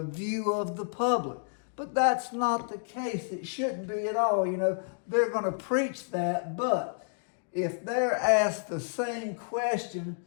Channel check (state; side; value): silent; right; digital silence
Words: view of the public. But that's not the case. It shouldn't be at all. You know, they're going to preach that, but if they're asked the same question